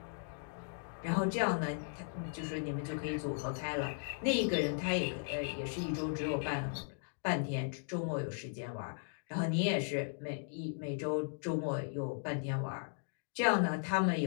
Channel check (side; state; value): right; silent; digital silence